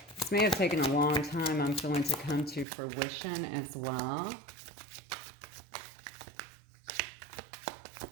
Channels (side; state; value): left; drops out; at 2.7 s